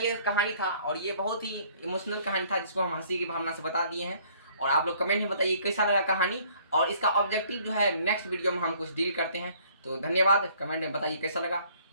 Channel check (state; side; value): inverted; both; correlation -0.59